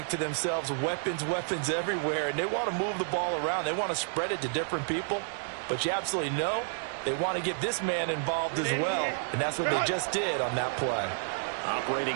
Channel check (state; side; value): silent; left; digital silence